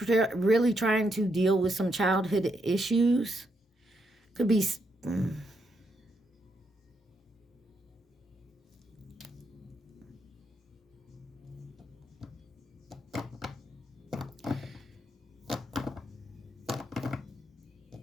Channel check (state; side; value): normal; both; correlation 0.79